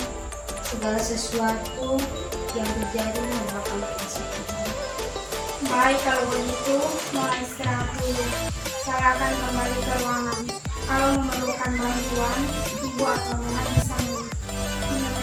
segala sesuatu yang terjadi merupakan kuasa Tuhan. Baik, kalau begitu Nona istirahat dulu. Saya akan kembali ke ruangan. Kalau memerlukan bantuan, ibu atau Nona bisa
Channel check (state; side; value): identical; both; correlation 1.00